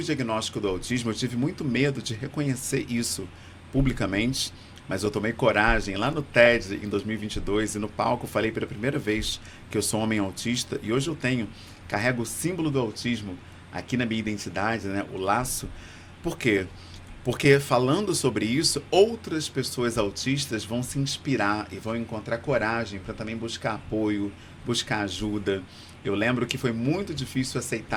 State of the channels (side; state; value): both; identical; correlation 1.00